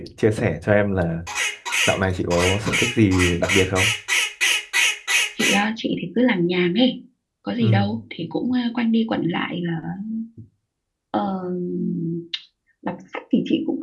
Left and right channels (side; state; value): both; identical; correlation 1.00